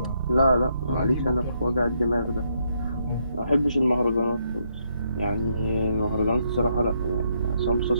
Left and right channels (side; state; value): both; inverted; correlation -0.75